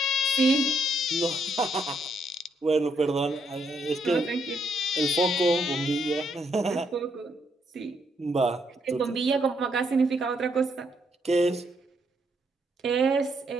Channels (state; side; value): normal; both; correlation 0.75